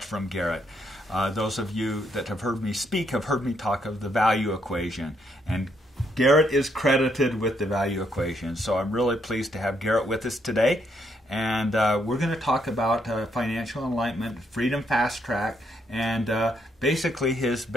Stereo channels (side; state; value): both; normal; correlation 0.74